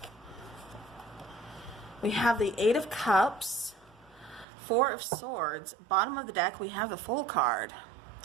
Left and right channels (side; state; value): left; drops out; at 4.5 s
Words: we have the Eight of Cups, Four of Swords. Bottom of the deck, we have the Fool card.